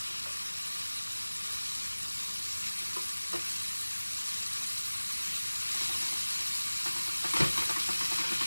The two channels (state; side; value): inverted; both; correlation -1.00